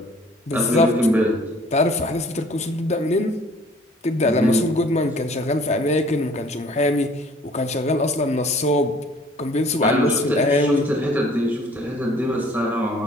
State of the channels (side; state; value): both; normal; correlation 0.54